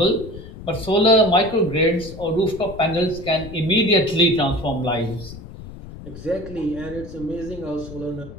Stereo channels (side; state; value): left; noise; rumble, 14 dB below the sound